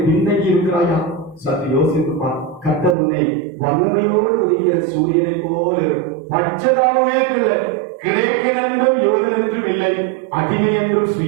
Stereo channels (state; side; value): drops out; left; at 3.0 s